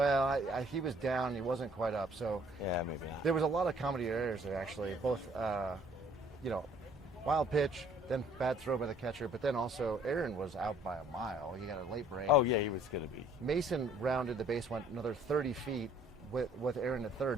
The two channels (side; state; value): right; noise; hum, 26 dB below the sound